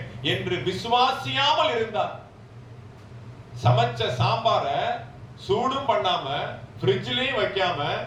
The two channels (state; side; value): identical; both; correlation 1.00